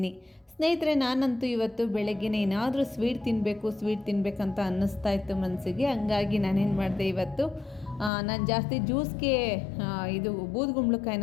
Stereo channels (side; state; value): right; drops out; at 8.1 s